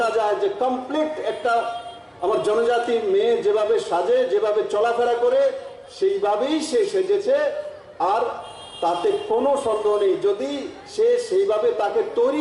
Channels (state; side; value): identical; both; correlation 1.00